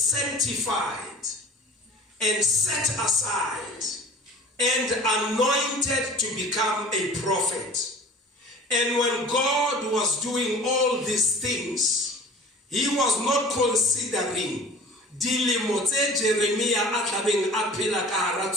and set aside and anointed to become a prophet. And when God was doing all these things, he was not considering dilemo tse Jeremiah a tlabeng a phela ka hara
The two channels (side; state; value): both; normal; correlation 0.43